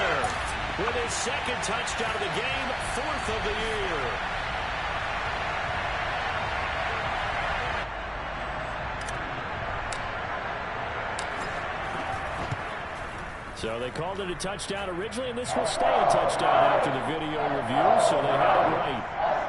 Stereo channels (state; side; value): identical; both; correlation 1.00